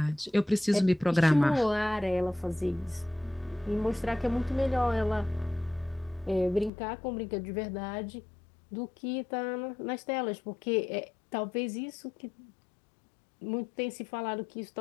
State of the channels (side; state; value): right; drops out; at 6.7 s